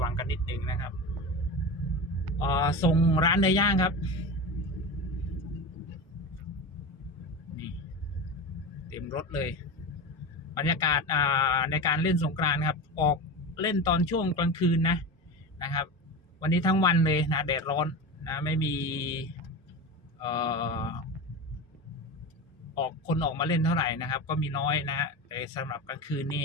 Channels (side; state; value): both; normal; correlation 0.25